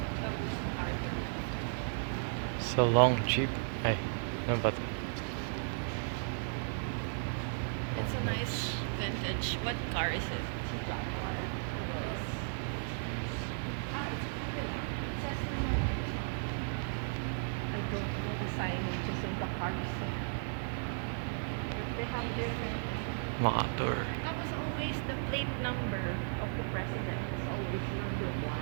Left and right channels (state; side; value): silent; left; digital silence